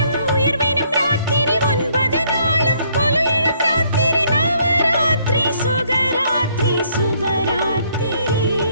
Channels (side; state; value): both; inverted; correlation -0.67